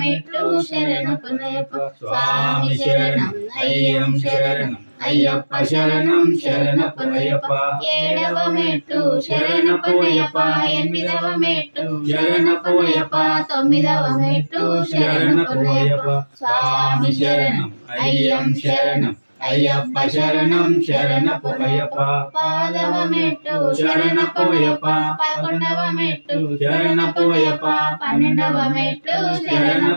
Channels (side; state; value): both; inverted; correlation -1.00